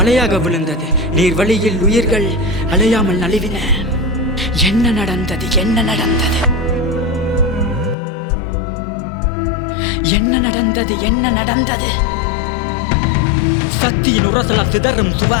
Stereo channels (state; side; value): drops out; right; at 8.0 s